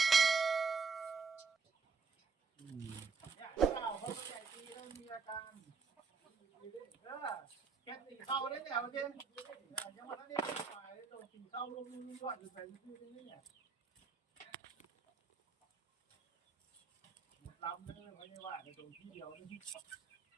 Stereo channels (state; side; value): quieter; left; 5.2 dB